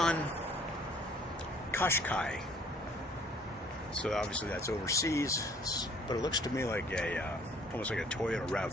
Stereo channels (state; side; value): normal; both; correlation 0.58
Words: Qashqai. So obviously that's overseas, but it looks to me like almost like a Toyota